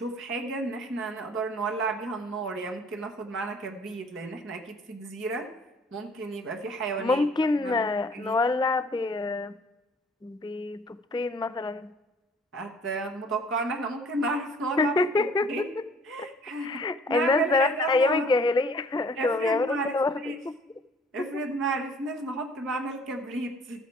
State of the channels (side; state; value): both; normal; correlation 0.55